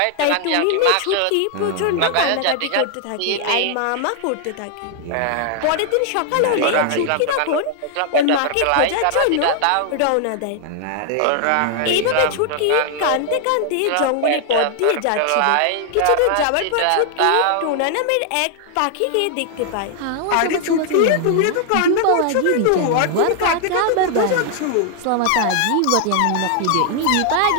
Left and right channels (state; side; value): different; both; correlation 0.00